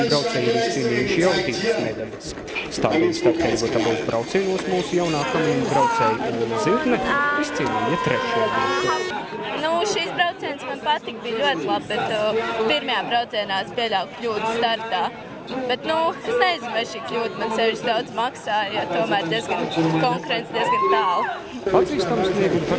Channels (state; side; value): identical; both; correlation 1.00